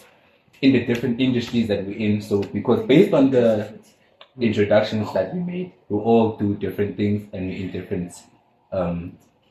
in the different industries that we're in. So because based on the introductions that we made, we all do different things and we're in different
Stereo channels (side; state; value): both; identical; correlation 1.00